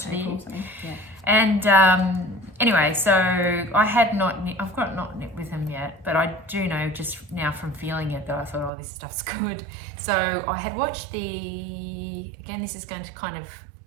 of the year. April, something. Yeah. And anyway, so I had not knit, I've got not knit with them yet, but I do know just now from feeling it that I thought, oh, this stuff's good. So I had watched again, this is going to kind of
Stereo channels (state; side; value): drops out; left; at 8.7 s